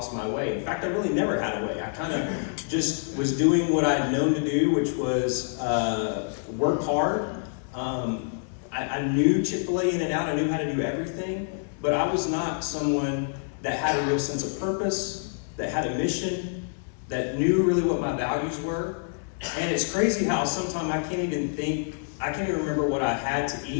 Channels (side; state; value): right; silent; 60 dB below the other